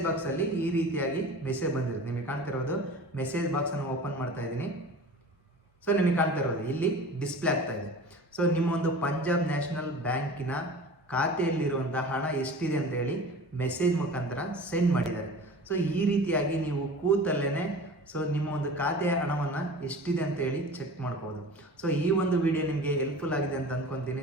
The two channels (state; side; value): normal; both; correlation 0.38